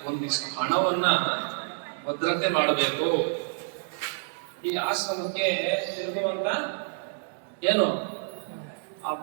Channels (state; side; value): silent; left; 59 dB below the other